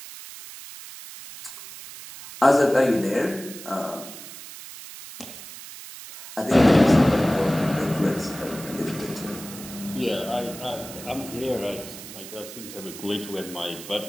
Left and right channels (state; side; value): noise; right; hiss, 14 dB below the sound